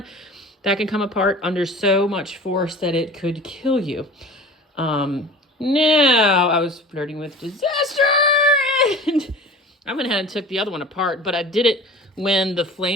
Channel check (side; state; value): both; normal; correlation 0.40